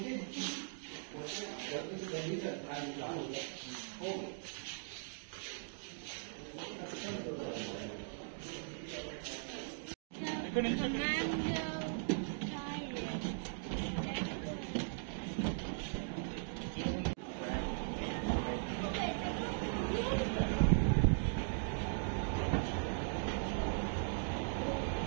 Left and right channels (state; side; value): silent; left; digital silence